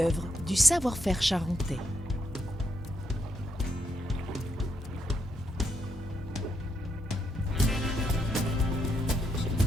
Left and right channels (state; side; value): normal; both; correlation 0.79